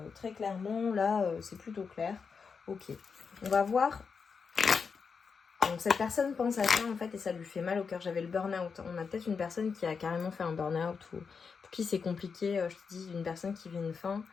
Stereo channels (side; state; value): right; quieter; 5.6 dB